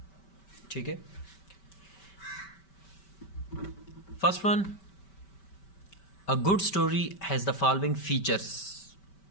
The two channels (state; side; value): late; right; 5.2 ms